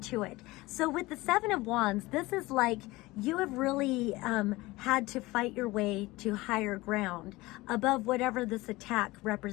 it. So with the Seven of Wands, this is like you have really had to fight your way to higher ground above whatever this attack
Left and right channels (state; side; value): quieter; right; 20.4 dB